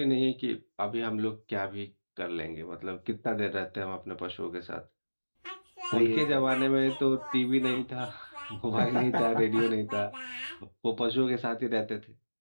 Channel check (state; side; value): inverted; both; correlation -1.00